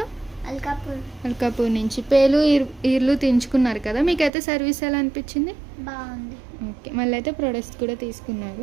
అల్కాపూర్ నుంచి. పేలు ఈర్లు తెంచుకున్నారు కదా, మీకైతే సర్వీస్ ఎలా అనిపించింది? బాగుంది. ఓకే, మళ్ళీ అయితే ప్రొడక్ట్స్ కూడా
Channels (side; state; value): left; drops out; at 4.3 s